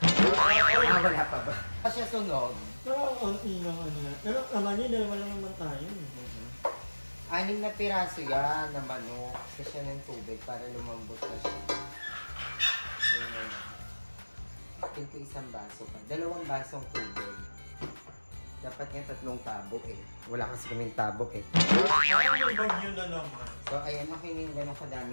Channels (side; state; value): both; inverted; correlation -1.00